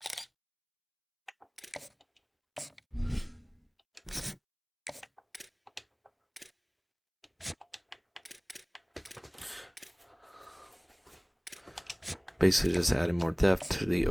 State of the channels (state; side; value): identical; both; correlation 1.00